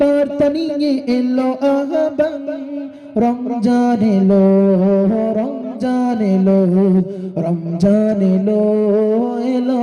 বার্তা নিয়ে এলো আহ্বান। রমজান এলো, রমজান এলো, রমজান এলো, এলো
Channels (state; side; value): identical; both; correlation 1.00